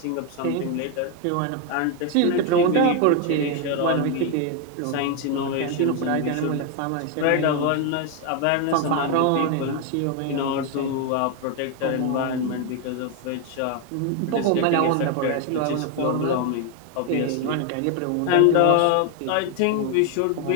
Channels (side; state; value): both; different; correlation 0.01